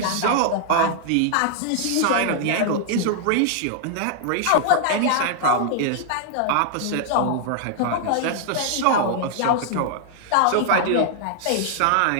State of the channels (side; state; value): both; different; correlation -0.01